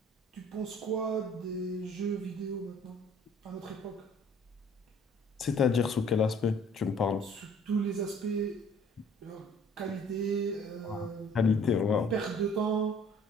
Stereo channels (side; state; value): both; normal; correlation 0.55